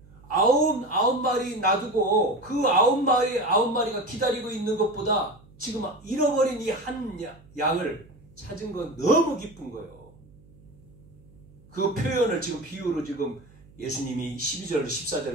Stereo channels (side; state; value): right; noise; hum, 25 dB below the sound